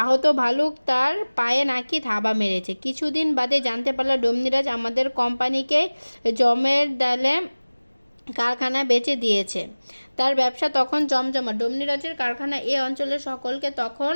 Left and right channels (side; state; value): both; inverted; correlation -1.00